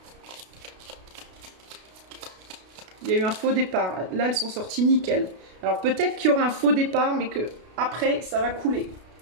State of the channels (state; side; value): late; left; 32 ms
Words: Il y a eu un faux départ. Là, elles sont sorties nickel. Alors, peut-être qu'il y aura un faux départ, mais que après, ça va couler.